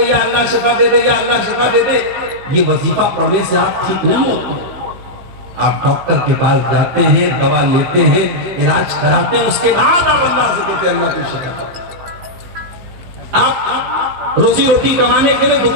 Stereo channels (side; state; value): left; late; 15 ms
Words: یا اللہ شفا دے دے، یا اللہ شفا دے دے، یہ وظیفہ پڑھنے سے آپ ٹھیک نہیں ہوتے۔ آپ ڈاکٹر کے پاس جاتے ہیں، دوا لیتے ہیں، علاج کراتے ہیں، اس کے بعد آپ اللہ سے کہتے ہیں اللہ کو شفا دے۔ آپ روزی روٹی کمانے کے لیے